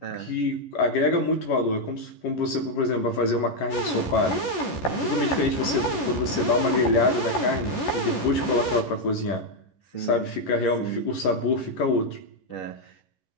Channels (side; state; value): right; late; 11 ms